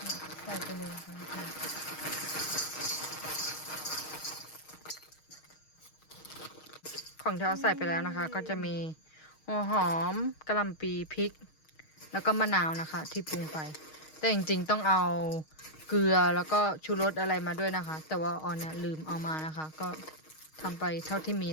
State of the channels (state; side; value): late; right; 6.4 ms